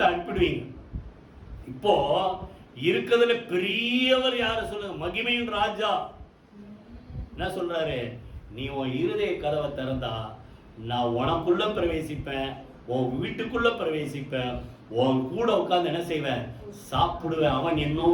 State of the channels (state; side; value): identical; both; correlation 1.00